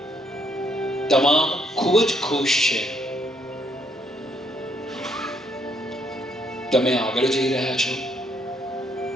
તમામ ખૂબ જ ખુશ છે. તમે આગળ જઈ રહ્યા છો,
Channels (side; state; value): both; normal; correlation 0.71